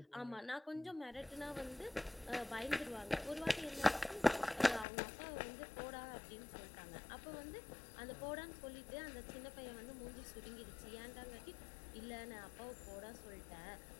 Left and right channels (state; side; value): drops out; right; at 4.9 s